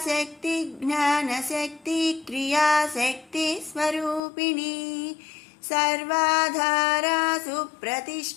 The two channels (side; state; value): right; drops out; at 4.2 s